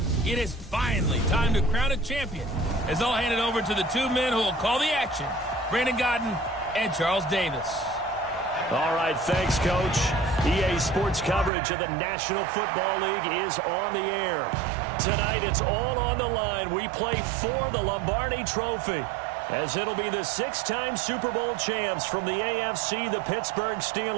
It is finally time to crown a champion, as I'll hand it over to the two men who will call the action, Brandon Godden and Charles Davis. All right, thanks, Coach. EA Sports coverage of the National Football League is on the air. Tonight, it's all on the line. We play for the Lombardi Trophy, as it'll be the six-time Super Bowl champs from the AFC, the Pittsburgh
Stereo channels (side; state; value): left; drops out; at 11.5 s